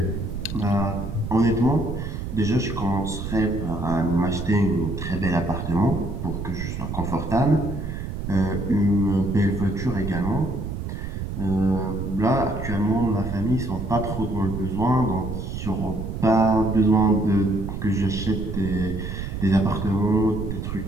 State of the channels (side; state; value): right; noise; rumble, 5 dB below the sound